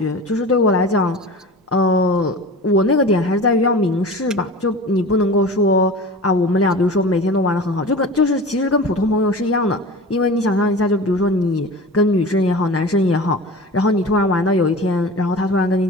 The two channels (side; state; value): both; normal; correlation 0.35